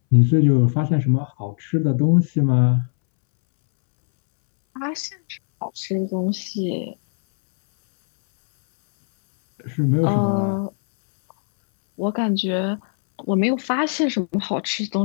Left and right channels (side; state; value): right; silent; 65 dB below the other